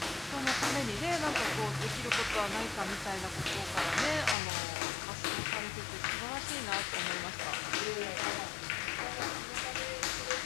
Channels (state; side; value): drops out; right; at 4.4 s